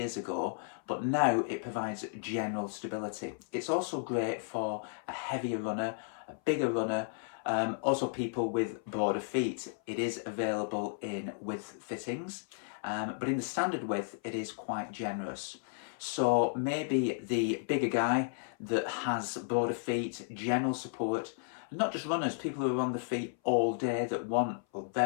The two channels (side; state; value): right; silent; 55 dB below the other